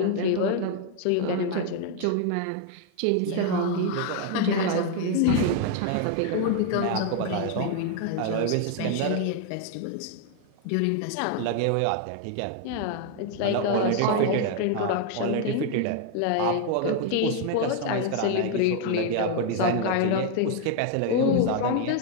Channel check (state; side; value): different; both; correlation 0.00